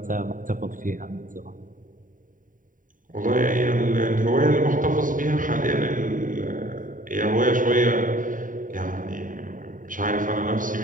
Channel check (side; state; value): left; late; 0.39 ms